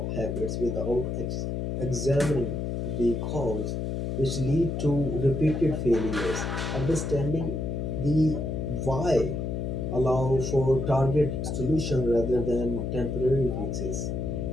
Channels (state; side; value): noise; left; hum, 2 dB below the sound